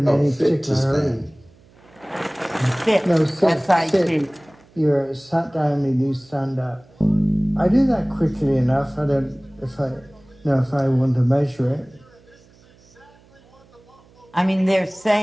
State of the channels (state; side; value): noise; right; hum, 29 dB below the sound